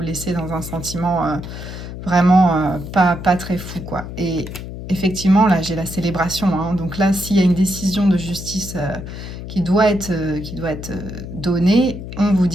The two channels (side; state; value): left; noise; hum, 10 dB below the sound